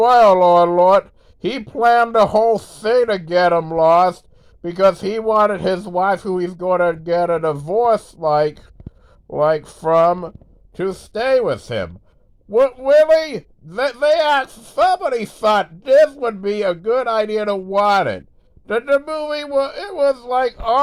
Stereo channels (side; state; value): both; identical; correlation 1.00